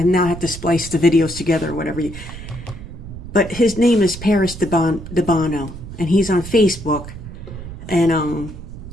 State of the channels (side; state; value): right; noise; rumble, 12 dB below the sound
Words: now have to splice the videos together or whatever. But his name is Paris Debano, and he's on Facebook. And